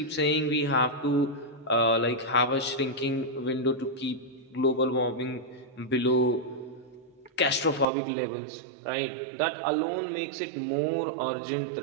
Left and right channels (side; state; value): left; drops out; at 7.9 s